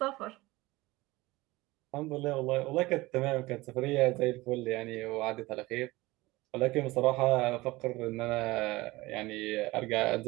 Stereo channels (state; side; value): quieter; left; 20.3 dB